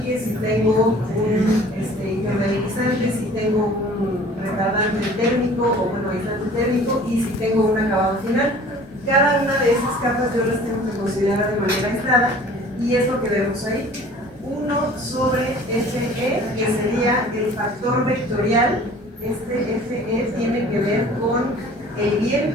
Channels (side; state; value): both; normal; correlation 0.48